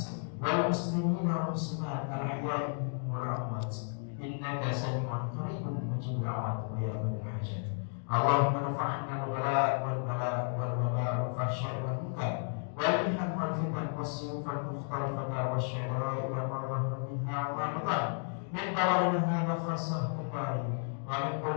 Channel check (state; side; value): silent; right; 56 dB below the other